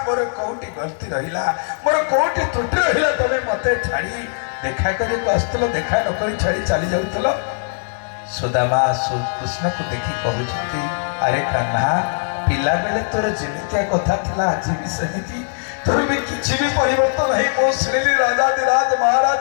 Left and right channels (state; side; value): silent; right; 66 dB below the other